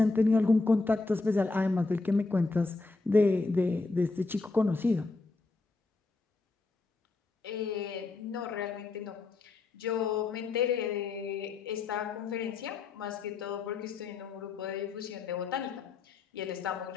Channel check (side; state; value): right; quieter; 3.7 dB